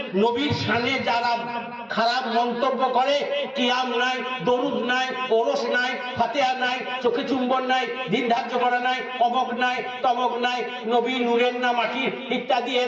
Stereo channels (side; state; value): both; identical; correlation 1.00